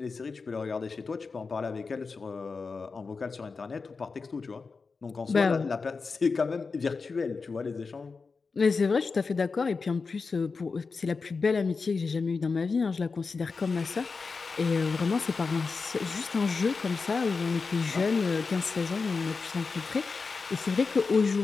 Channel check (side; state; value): right; quieter; 4.6 dB